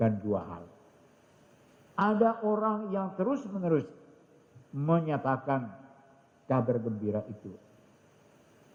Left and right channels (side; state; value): both; identical; correlation 1.00